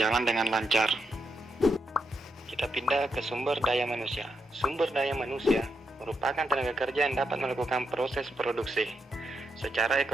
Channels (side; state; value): both; normal; correlation 0.83